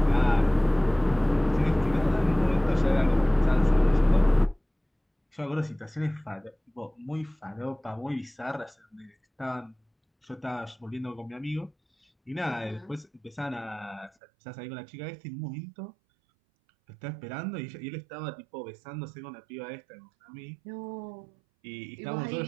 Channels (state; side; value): drops out; left; at 14.1 s